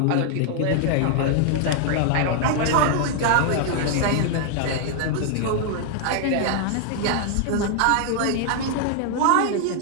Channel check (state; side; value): different; both; correlation 0.00